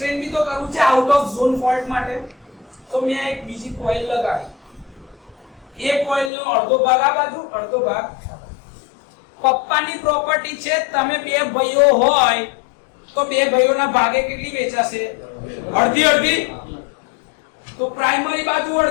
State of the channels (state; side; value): drops out; right; at 6.3 s